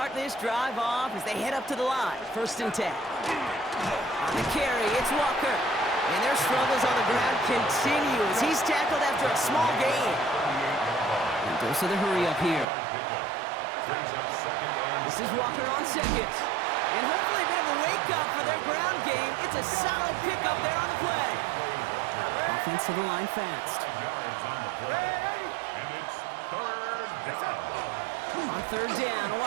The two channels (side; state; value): left; drops out; at 12.7 s